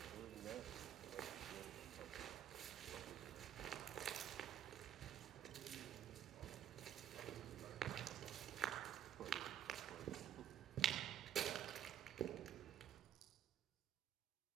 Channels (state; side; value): quieter; left; 9.7 dB